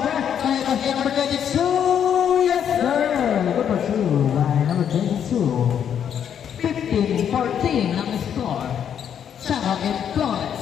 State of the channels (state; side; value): quieter; right; 8.7 dB